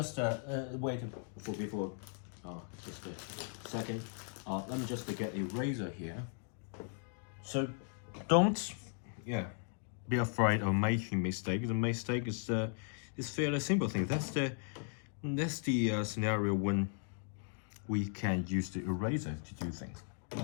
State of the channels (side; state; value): right; silent; 53 dB below the other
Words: wait before just a second. Let me just get a razor here. So don't be afraid of making mistake. The mistake is fairly simple thing. That's the scenario when we can use the eraser to do things.